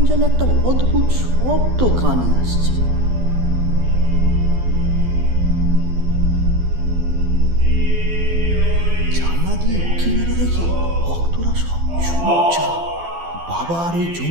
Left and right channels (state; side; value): late; left; 12 ms